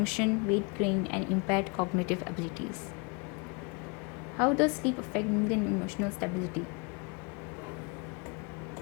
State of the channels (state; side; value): quieter; right; 31.9 dB